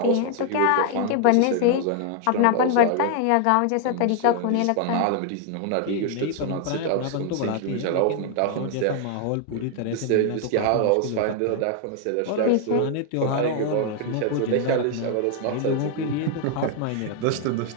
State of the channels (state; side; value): different; both; correlation 0.00